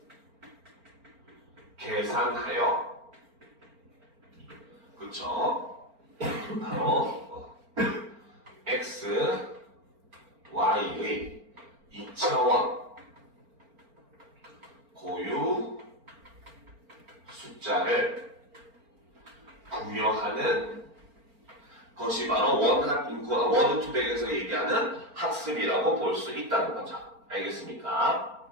계산하여 그쵸? 바로 x, y의 2차원 고유 숫자를 부여하는 것이 바로 원한 인코딩, 워드 투 백에서 얘기하는 학습이라고 볼 수 있다는 거죠. 알겠습니까?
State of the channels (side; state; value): left; late; 4.4 ms